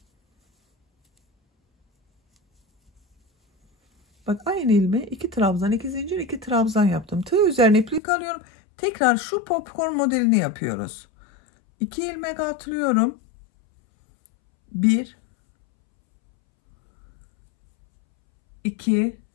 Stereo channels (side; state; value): right; drops out; at 8.0 s